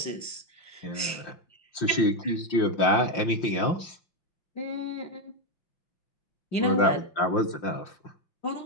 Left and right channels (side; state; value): right; late; 5.7 ms